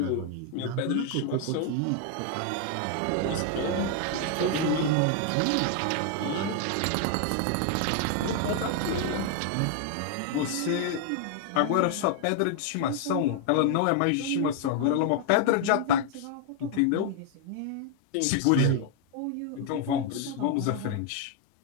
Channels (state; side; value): different; both; correlation 0.00